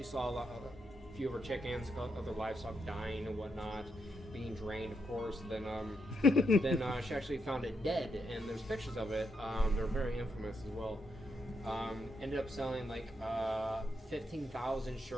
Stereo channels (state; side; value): normal; both; correlation 0.81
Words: saw a few of her chickens, other livestock dying and whatnot, being drained, of course. Then she actually found it dead, and there's pictures of it. They're very infamous as well. Ended up selling like 15,000